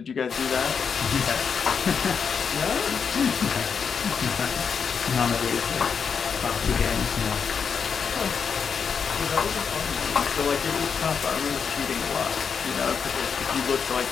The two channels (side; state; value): right; quieter; 6.3 dB